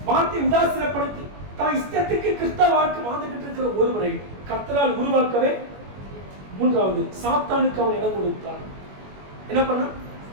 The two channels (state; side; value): late; left; 21 ms